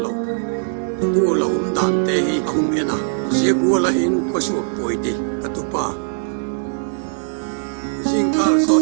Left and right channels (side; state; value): left; silent; digital silence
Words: lo tu lo dan te hi ahung ena zegula hin khosu poiti katupa jingkal